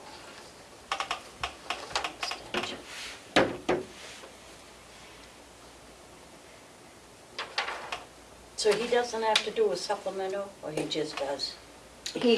Extension. So he doesn't have to do a supplemental, or he just does?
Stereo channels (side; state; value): both; identical; correlation 1.00